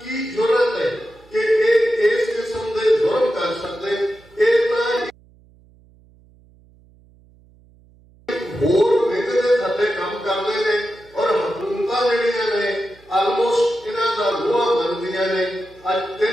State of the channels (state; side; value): noise; right; hum, 28 dB below the sound